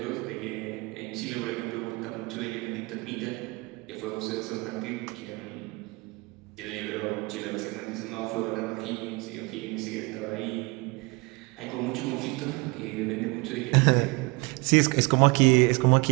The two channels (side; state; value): left; quieter; 26.8 dB